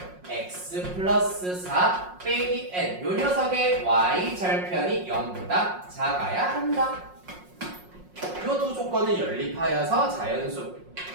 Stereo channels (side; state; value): left; late; 5.5 ms